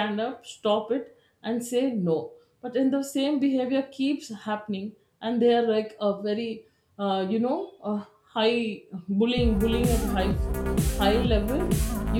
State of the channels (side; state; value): both; identical; correlation 1.00